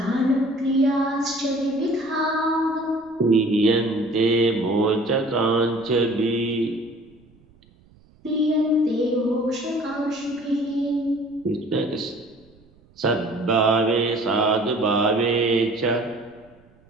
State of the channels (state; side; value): noise; right; rumble, 30 dB below the sound